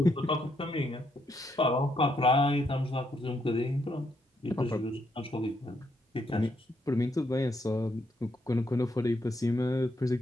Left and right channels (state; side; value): normal; both; correlation 0.76